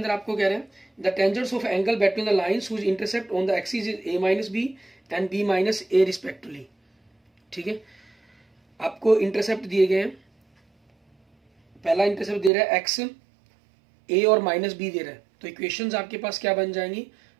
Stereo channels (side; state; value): left; drops out; at 12.5 s